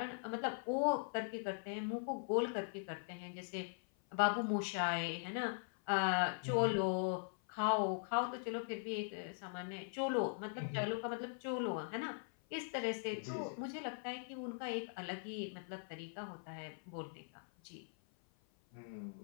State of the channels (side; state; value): right; silent; 50 dB below the other